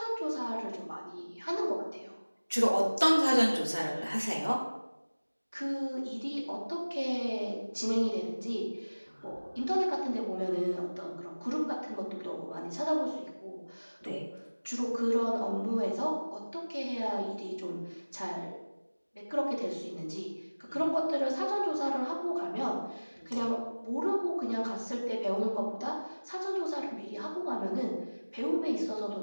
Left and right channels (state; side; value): inverted; both; correlation -1.00